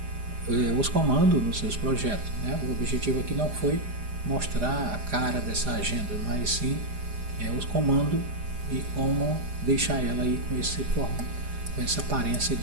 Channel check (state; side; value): late; left; 4.9 ms